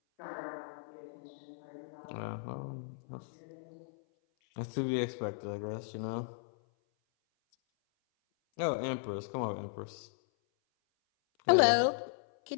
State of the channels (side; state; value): right; silent; 54 dB below the other